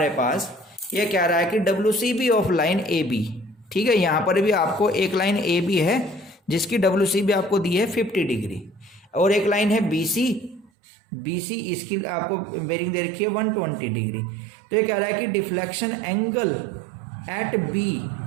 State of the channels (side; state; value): left; drops out; at 10.7 s